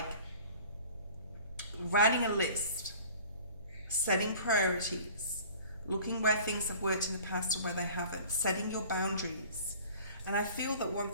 writing a list, setting priorities, looking where things have worked in the past and where they haven't, setting your boundaries. And I feel that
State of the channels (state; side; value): inverted; both; correlation -0.47